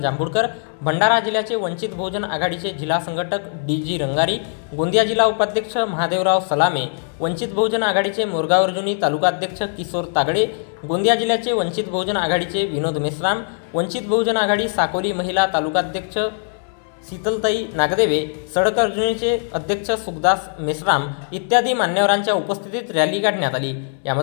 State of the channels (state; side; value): silent; right; 65 dB below the other